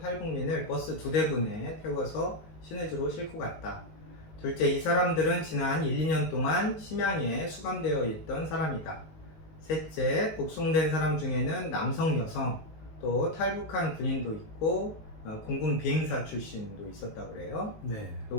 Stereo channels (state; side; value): late; right; 19 ms